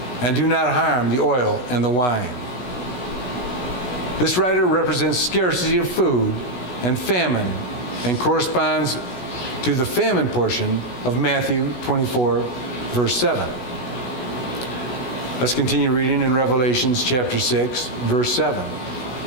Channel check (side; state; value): right; late; 16 ms